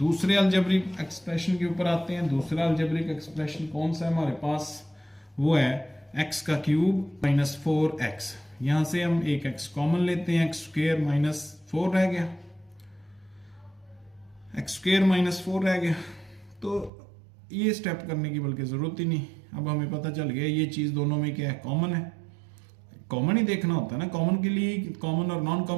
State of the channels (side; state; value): left; drops out; at 16.9 s